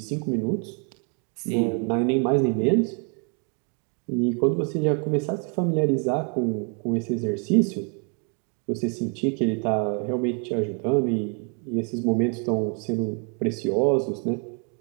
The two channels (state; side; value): quieter; left; 38.5 dB